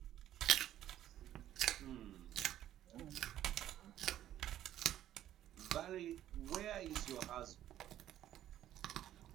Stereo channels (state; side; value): quieter; left; 12.2 dB